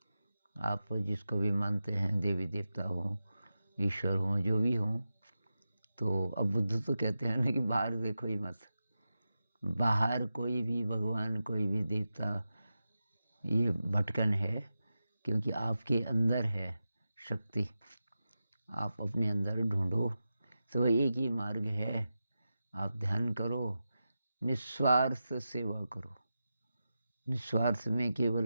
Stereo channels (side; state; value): both; inverted; correlation -0.91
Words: आप जिसको भी मानते हैं, देवी देवता हो, ईश्वर हो, जो भी हो, तो अब बुद्ध तो कहते हैं ना कि बाहर देखो ही मत। बाहर कोई भी भगवान, कोई भी देवता, ये भटकन है, क्योंकि आपके अंदर है शक्ति। आप अपने अंदर ढूंढो, तो एक ही मार्ग है। आप ध्यान करो, निस्वार्थ सेवा करो। निस्वार्थ में